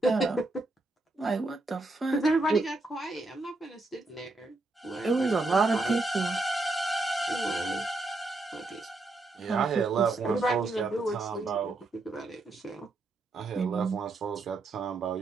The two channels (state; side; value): quieter; left; 3.1 dB